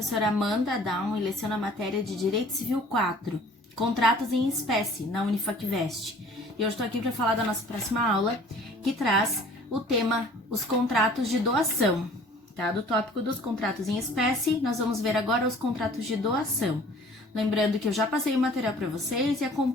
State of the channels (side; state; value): both; normal; correlation 0.50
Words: Amanda Down e leciono a matéria de Direito Civil 4, Contratos em Espécie, na Unifacvest. E eu estou aqui para falar da nossa próxima aula, que traz o tema Os Contratos de Doação. Tá? Do tópico dos contratos em espécie, nós vamos ver agora os contratos de doação. Lembrando que eu já passei o material para vocês e